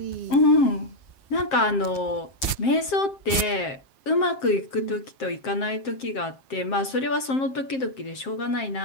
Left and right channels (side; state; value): right; late; 7.7 ms